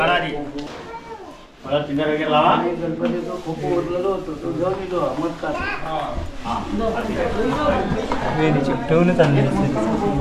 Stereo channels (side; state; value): both; identical; correlation 1.00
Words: आधी मला चिंता वगैरे लावा गणपतीचं खूप ओरलेलो होतो तो घेऊन येतो मग का चिकटवूनच आणले